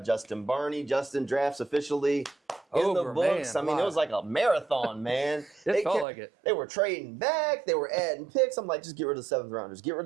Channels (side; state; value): left; drops out; at 6.1 s